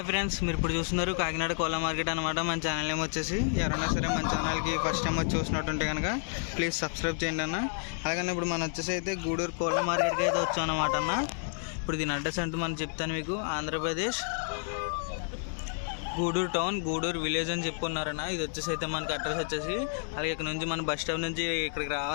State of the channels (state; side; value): silent; right; 58 dB below the other